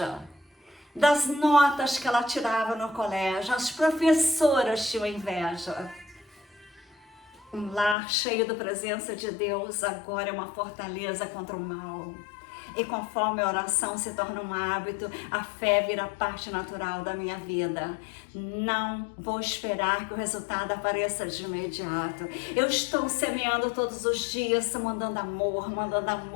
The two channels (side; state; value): right; drops out; at 8.0 s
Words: das notas que ela tirava no colégio. As professoras tinham inveja. Um lar cheio da presença de Deus agora é uma fortaleza contra o mal. E conforme a oração se torna um hábito, a fé vira parte natural da minha vida. Não vou esperar que o resultado apareça de imediato. Eu estou semeando todos os dias, mandando amor, mandando